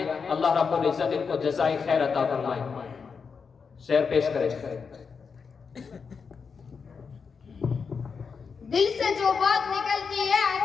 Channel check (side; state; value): right; quieter; 5.6 dB